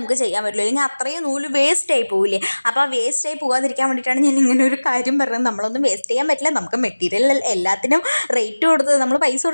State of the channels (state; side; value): inverted; both; correlation -1.00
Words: ചെയ്യാൻ പറ്റില്ല, അല്ലെങ്കിൽ അത്രയും നൂല് വേസ്റ്റായി പോവില്ലേ. അപ്പോൾ ആ വേസ്റ്റായി പോകാതിരിക്കാൻ വേണ്ടിയിട്ടാണ് ഞാൻ ഇങ്ങനെ ഒരു കാര്യം പറഞ്ഞത്. നമ്മളൊന്നും വേസ്റ്റ് ചെയ്യാൻ പറ്റില്ല, നമുക്ക് മെറ്റീരിയൽ എല്ലാത്തിനും റേറ്റ് കൊടുത്ത് നമ്മൾ പൈസ